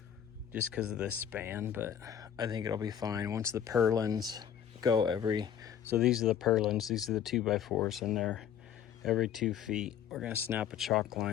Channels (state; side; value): quieter; right; 9.3 dB